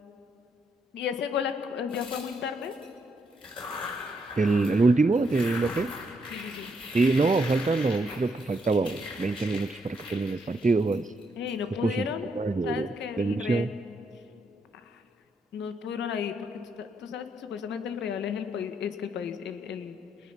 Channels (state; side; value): normal; both; correlation 0.76